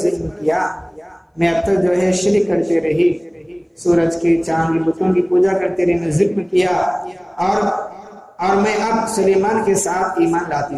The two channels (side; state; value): both; identical; correlation 1.00